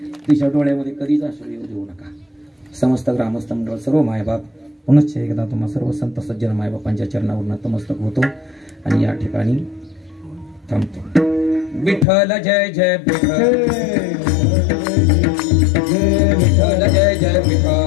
तिच्या डोळ्यामध्ये कधीच अश्रू येऊ देऊ नका. समस्त ग्रामस्थ मंडळ सर्व मायबाप पुनश्च एकदा तुम्हा सर्व संत सज्जन मायबापांच्या चरणावर नतमस्तक होतो आणि या ठिकाणी थांबतो. विठ्ठल जय जय विठ्ठल, विठ्ठल जय जय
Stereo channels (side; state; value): right; drops out; at 12.1 s